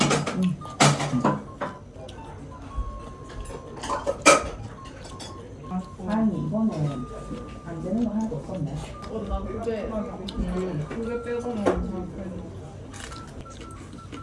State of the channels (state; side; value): identical; both; correlation 1.00